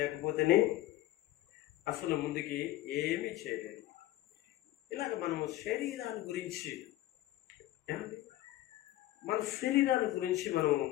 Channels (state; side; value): quieter; right; 15.3 dB